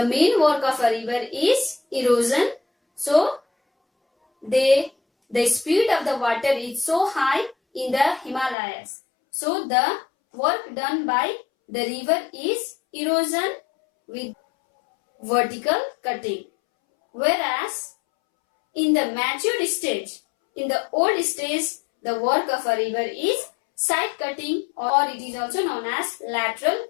main work of a river is erosion. So, the speed of the water is so high in the Himalayas. So, the work done by the river is erosion with vertical cutting. Whereas, in the matured stage, in the old stage, the work of a river is side cutting or it is also known as lateral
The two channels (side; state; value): right; drops out; at 8.6 s